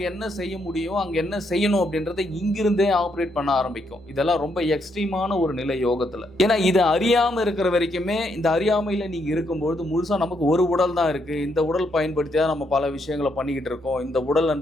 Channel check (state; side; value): normal; both; correlation 0.76